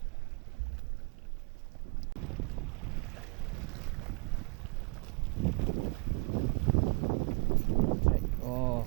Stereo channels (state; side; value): quieter; left; 32.3 dB